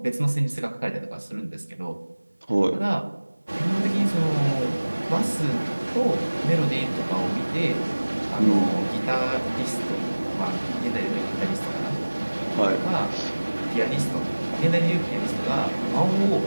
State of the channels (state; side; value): inverted; both; correlation -1.00